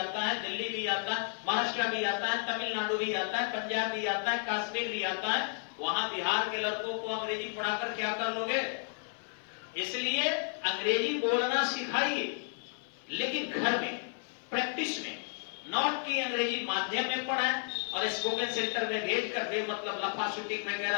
है, दिल्ली भी आता है, महाराष्ट्र भी आता है, तमिलनाडु भी आता है, पंजाब भी आता है, कश्मीर भी आता है, वहां बिहार के लड़कों को अंग्रेजी पढ़ाकर क्या कर लोगे? इसलिए अंग्रेजी बोलना सिखाइए, लेकिन घर में प्रैक्टिस में, नॉट की अंग्रेजी माध्यम में पढ़ाएं, और स्पोकन सेंटर में भेज कर दे, मतलब लफा शूटिंग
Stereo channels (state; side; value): silent; right; 56 dB below the other